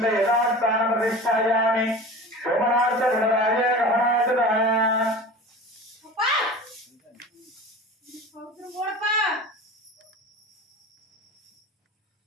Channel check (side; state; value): both; normal; correlation 0.35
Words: யதாஸ்தான பிரதிஷ்டாயாமி சோமநாத குணராஜ ரமணாசதான